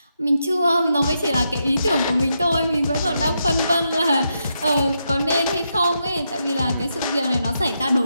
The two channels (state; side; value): inverted; both; correlation -0.82